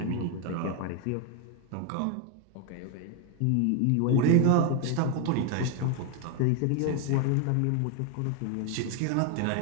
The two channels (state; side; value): different; both; correlation 0.01